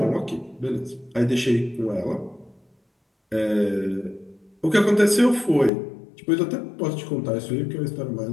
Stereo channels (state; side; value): drops out; right; at 5.7 s